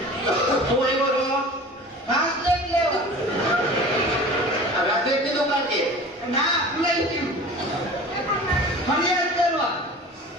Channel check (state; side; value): normal; both; correlation 0.39